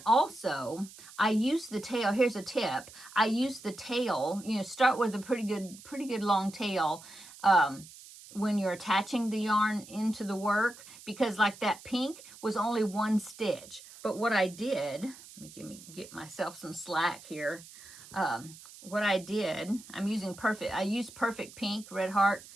also, I use the tail. Here's a tip. I use the tail, start with a pretty good long tail when you're attaching the yarn into the work, because like that pink was only one stitch. But what I did, let me get myself some slack here. What I did, I used Perfect Pink, Red Heart,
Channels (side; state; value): right; noise; hiss, 18 dB below the sound